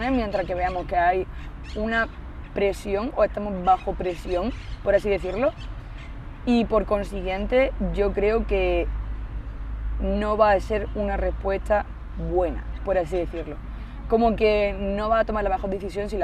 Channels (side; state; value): both; identical; correlation 1.00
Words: mientras que veamos que hay una presión o estamos bajo presión, por así decirlo, y por consiguiente yo creo que no va a ser una respuesta buena, por así decirlo. Como que no va a tomar la mejor decisión si